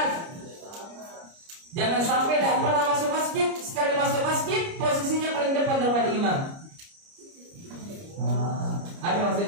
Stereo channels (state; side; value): late; left; 29 ms